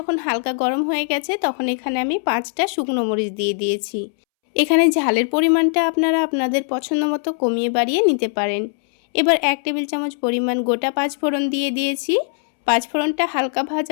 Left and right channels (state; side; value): silent; right; 66 dB below the other